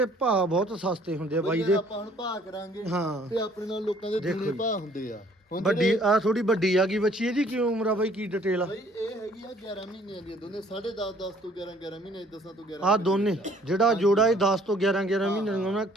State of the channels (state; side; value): normal; both; correlation 0.59